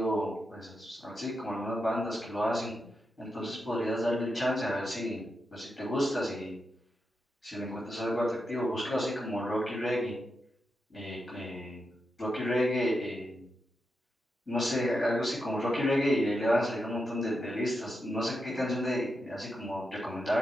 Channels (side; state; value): both; normal; correlation 0.86